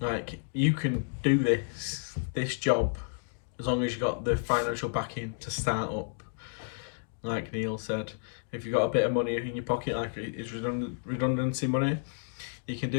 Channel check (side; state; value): right; silent; digital silence